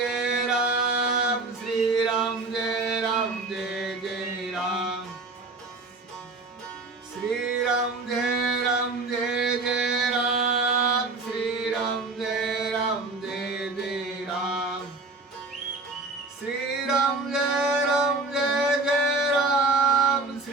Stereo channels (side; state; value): left; quieter; 3.4 dB